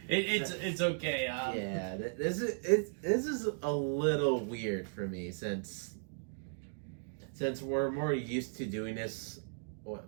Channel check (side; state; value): left; silent; digital silence